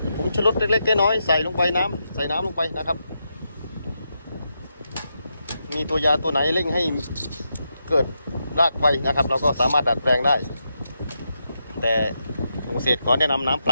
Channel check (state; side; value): inverted; both; correlation -0.84